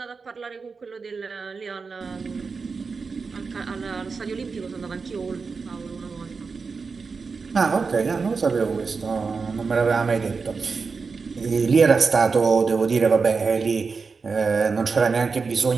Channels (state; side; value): quieter; left; 4.8 dB